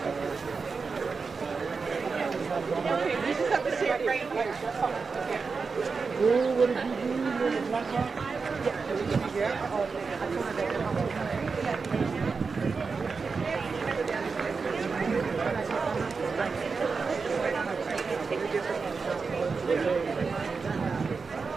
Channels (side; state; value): left; quieter; 4.8 dB